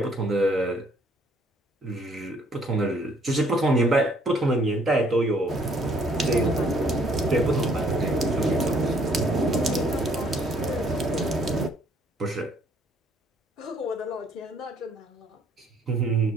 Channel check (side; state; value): both; normal; correlation 0.63